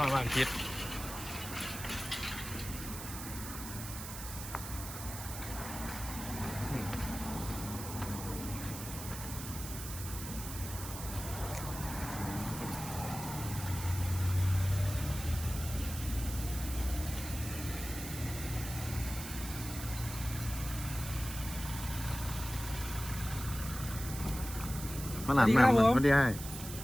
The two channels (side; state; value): right; noise; hiss, 9 dB below the sound